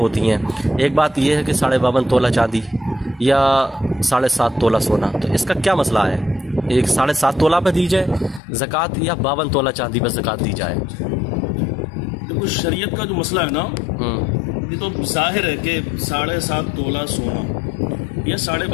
हैं। एक बात ये है कि 52.5 तोला चांदी या 7.5 तोला सोना, तो इसका क्या मसला है? एक 7.5 तोला पे दी जाए ज़कात या 52 तोला चांदी पर ज़कात दी जाए? देखो शरीयत का जो मसला है ना, ये तो जाहिर है कि 7.5 तोला सोना या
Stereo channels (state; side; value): drops out; right; at 8.4 s